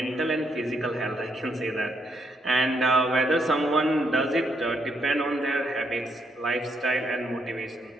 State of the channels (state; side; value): normal; both; correlation 0.75